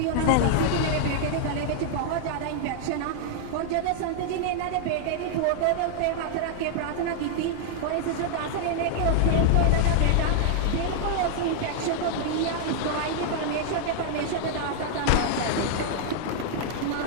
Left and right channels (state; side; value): different; both; correlation -0.01